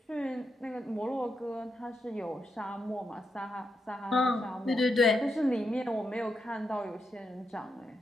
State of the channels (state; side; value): normal; both; correlation 0.84